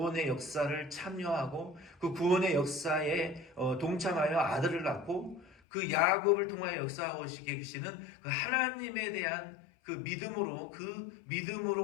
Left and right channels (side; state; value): right; drops out; at 5.6 s